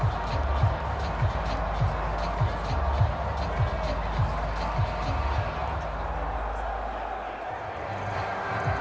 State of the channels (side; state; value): both; identical; correlation 1.00